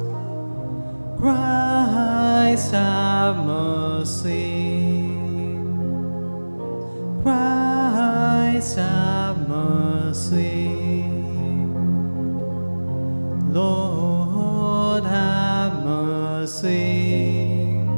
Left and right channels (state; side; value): inverted; both; correlation -1.00